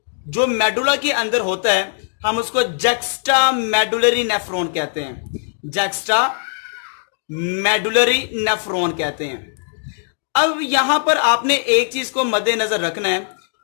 जो मेडुला के अंदर होता है हम उसको जक्स्टा मेडुलरी नेफ्रॉन कहते हैं, जक्स्टा मेडुलरी नेफ्रॉन कहते हैं। अब यहां पर आपने एक चीज को मद्देनजर रखना है,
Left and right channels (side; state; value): right; silent; digital silence